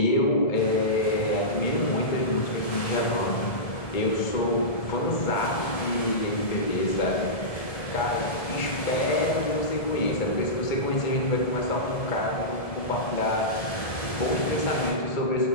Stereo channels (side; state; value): right; late; 1.7 ms